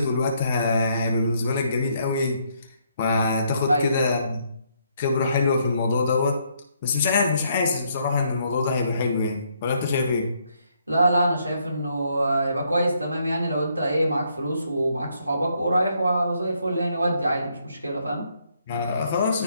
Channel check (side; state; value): both; inverted; correlation -0.72